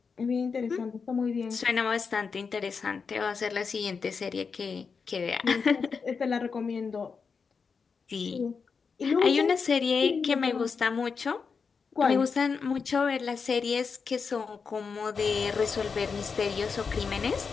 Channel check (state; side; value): quieter; right; 5.4 dB